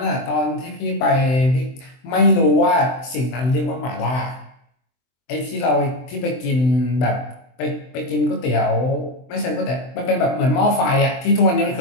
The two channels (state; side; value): late; right; 23 ms